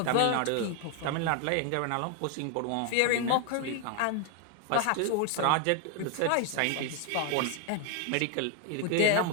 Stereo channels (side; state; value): both; different; correlation 0.01